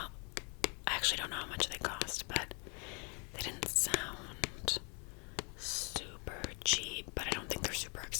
I actually don't know how much they cost, but they didn't sound super cheap, but I don't think they're super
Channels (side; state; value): right; quieter; 35.7 dB